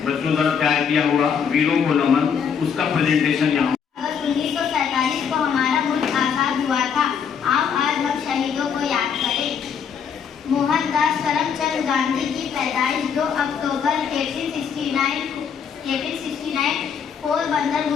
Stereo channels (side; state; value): right; quieter; 7.1 dB